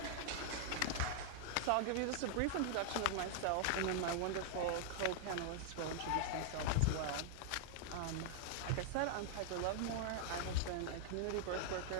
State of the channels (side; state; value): both; different; correlation 0.00